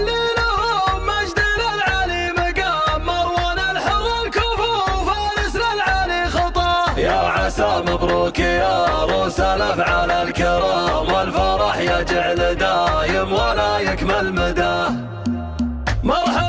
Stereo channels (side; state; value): both; identical; correlation 1.00